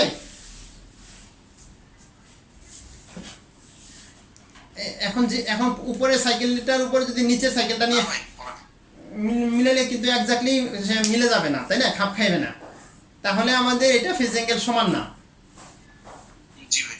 এখন উপরে সাইকেলটার উপরে যদি নিচে সাইকেলটা নিয়ে না ভাই বলেন। মিলালে কিন্তু এক্স্যাক্টলি মিলে যাবে না, তাই না, খাপ খাইবে না, তাহলে আমাদের এটা ফেজ অ্যাঙ্গেল সমান না। জি ভাই।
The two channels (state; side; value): identical; both; correlation 1.00